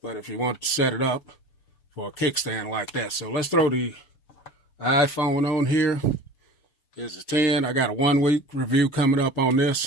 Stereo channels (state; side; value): late; right; 7.0 ms